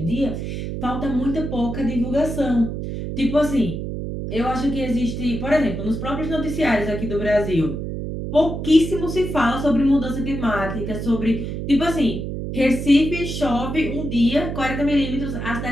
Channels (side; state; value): right; noise; hum, 5 dB below the sound